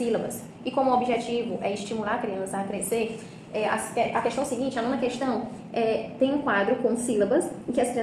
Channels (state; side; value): identical; both; correlation 1.00